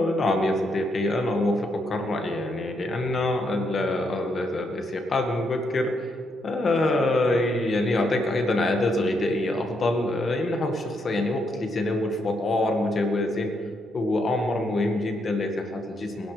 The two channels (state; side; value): normal; both; correlation 0.78